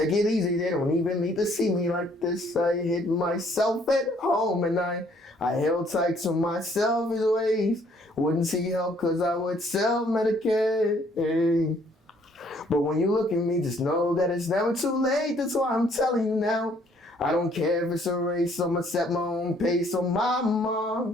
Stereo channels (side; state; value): both; normal; correlation 0.63